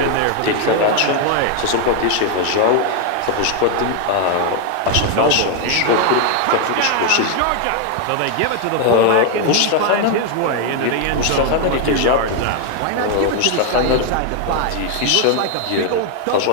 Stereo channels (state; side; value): different; both; correlation 0.01